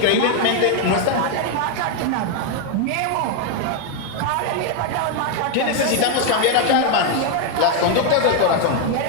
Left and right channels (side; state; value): both; different; correlation 0.01